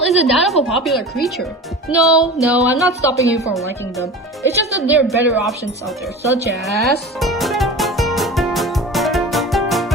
isn't that of a popular creature. No, I'm not stopping you from liking them. It's just that there are better options out there, such as...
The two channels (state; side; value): normal; both; correlation 0.34